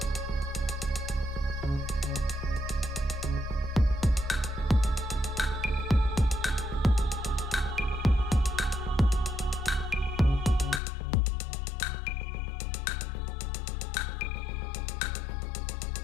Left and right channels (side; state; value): right; drops out; at 10.8 s